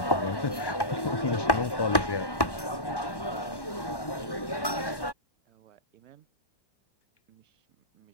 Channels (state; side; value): late; right; 1.1 ms